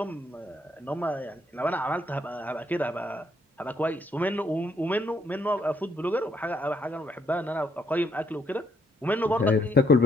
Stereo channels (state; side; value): normal; both; correlation 0.71